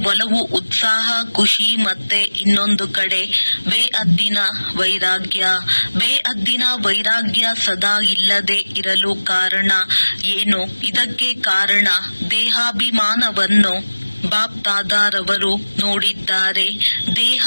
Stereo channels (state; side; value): inverted; both; correlation -1.00